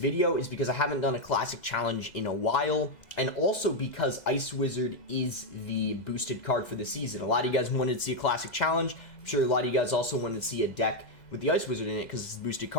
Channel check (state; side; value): late; right; 2.0 ms